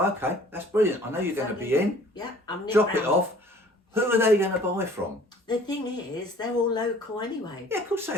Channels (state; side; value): normal; both; correlation 0.52